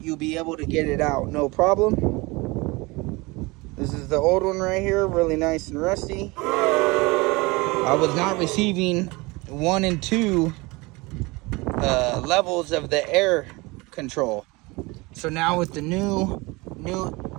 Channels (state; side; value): quieter; left; 24.2 dB